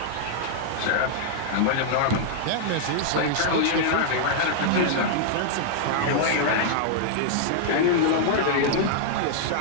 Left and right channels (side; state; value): both; different; correlation -0.01